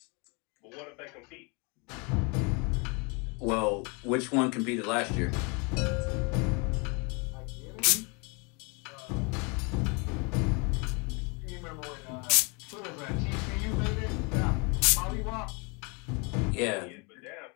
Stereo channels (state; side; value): quieter; right; 31.4 dB